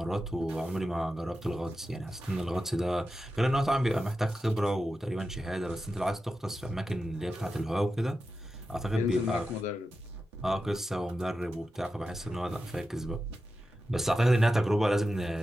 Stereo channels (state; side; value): normal; both; correlation 0.91